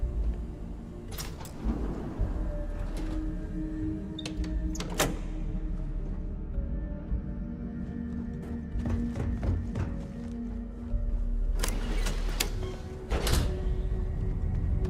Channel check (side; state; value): both; identical; correlation 1.00